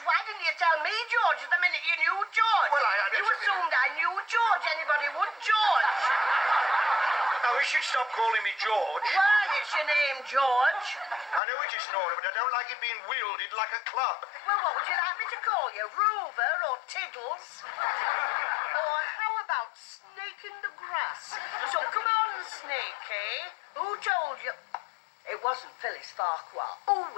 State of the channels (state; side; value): drops out; right; at 11.4 s